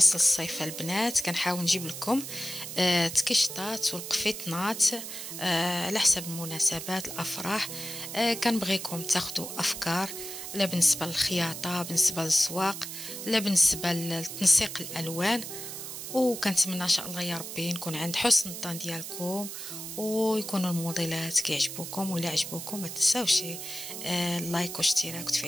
الصيف البنات كنحاول نجيب لكم تكشطات والقفيطنات على حسب المناسبات الافراح. كنبغيكم تاخذوا افكار، لا بالنسبه للخياطه، بالنسبه للزواق، لا بالنسبه لتنسيق الالوان. وكنتمنى ان شاء الله يا ربي نكون عند حسن الظن ديالكم، ويكونوا الموديلات كيعجبوكم. ولا عجبوكم ما تنساوش اللايك واشتراك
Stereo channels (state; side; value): noise; right; hiss, 8 dB below the sound